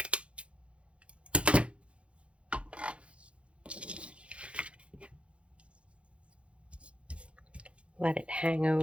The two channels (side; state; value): left; late; 0.060 ms